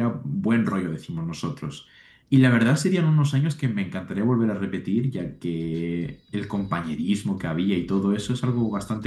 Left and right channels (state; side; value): identical; both; correlation 1.00